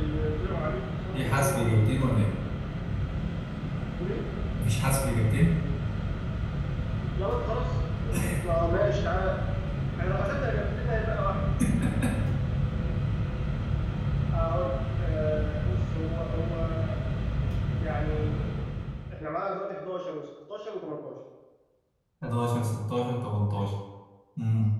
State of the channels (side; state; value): both; identical; correlation 1.00